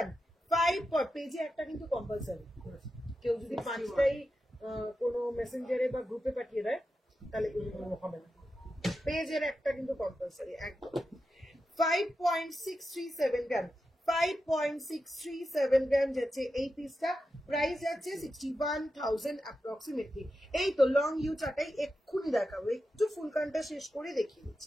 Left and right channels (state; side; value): normal; both; correlation 0.89